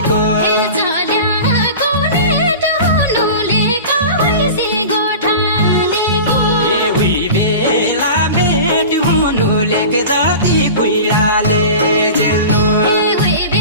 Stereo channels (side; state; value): both; inverted; correlation -0.34